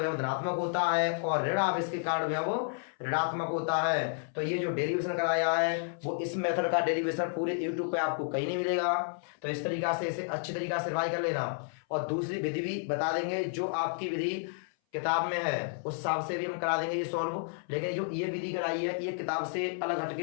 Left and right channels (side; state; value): right; silent; 57 dB below the other